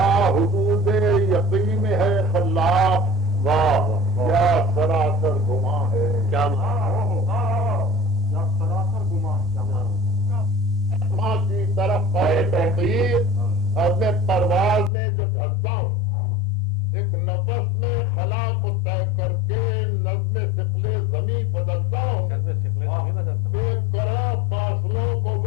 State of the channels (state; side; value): drops out; right; at 14.9 s